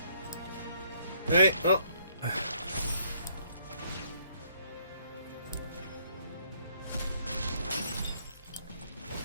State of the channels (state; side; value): inverted; both; correlation -0.65